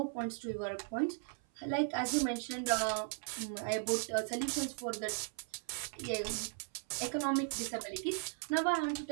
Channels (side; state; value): left; silent; 53 dB below the other